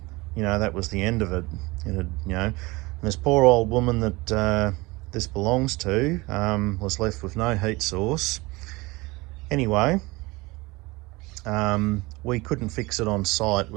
was the end of it. And this poor old woman that this belongs to was left with no heat source. Anyway, we couldn't fix it on site.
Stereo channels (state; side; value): quieter; left; 22.9 dB